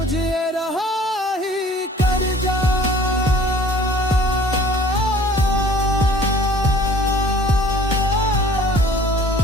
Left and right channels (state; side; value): normal; both; correlation 0.51